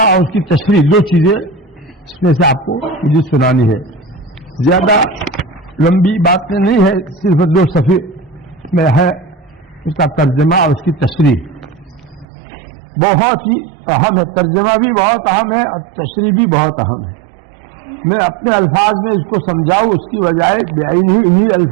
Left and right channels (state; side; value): drops out; left; at 12.2 s